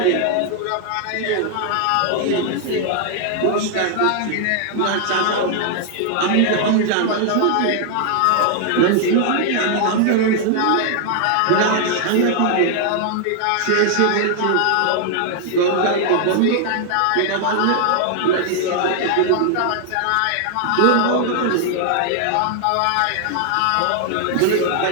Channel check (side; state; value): both; different; correlation 0.00